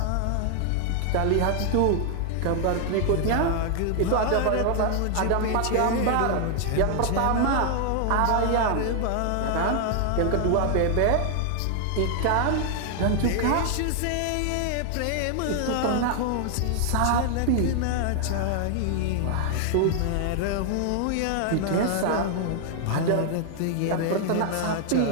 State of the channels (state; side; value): different; both; correlation 0.00